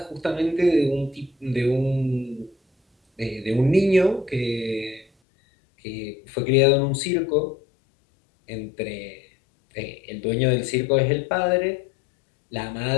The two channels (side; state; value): right; drops out; at 5.1 s